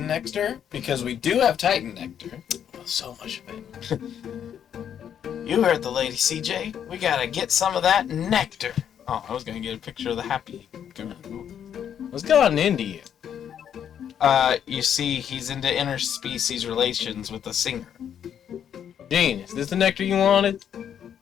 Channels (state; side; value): quieter; right; 9.0 dB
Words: nectar? Because we do have Titan nectar. Oh, so much of it. You heard the lady, CJ. We gotta get some of that nectar. Oh, I was gonna get a picture of the happy Garoo. What's gotten into you? You see, he's into interspecies relations with a singer. Gene, is this the nectar you wanted?